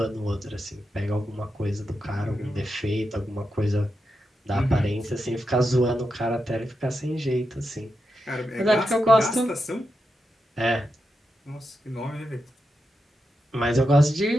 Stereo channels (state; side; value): normal; both; correlation 0.87